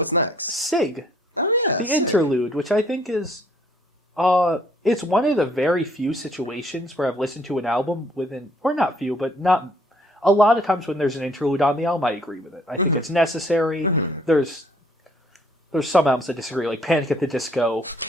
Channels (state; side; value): normal; both; correlation 0.62